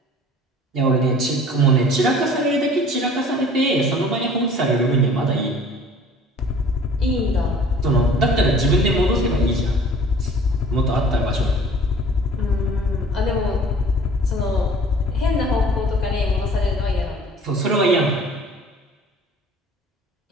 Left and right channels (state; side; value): normal; both; correlation 0.48